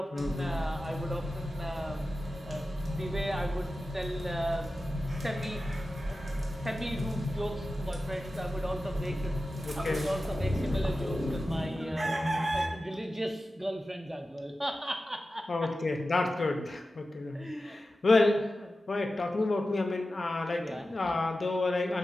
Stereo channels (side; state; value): both; normal; correlation 0.93